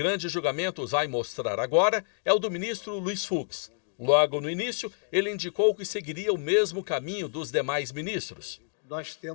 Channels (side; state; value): right; silent; digital silence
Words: Julgamento vai mostrar agora é o do ministro Luiz Fux. Logo no início, ele indicou que seguiria o mesmo caminho dos demais ministros. Nós